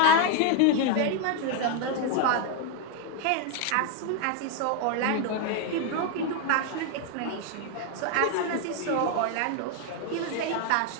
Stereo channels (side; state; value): both; different; correlation 0.01